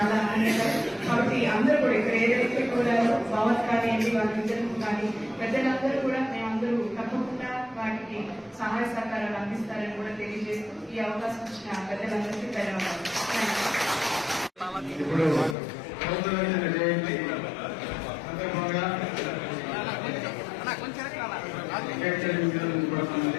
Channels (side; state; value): right; drops out; at 15.6 s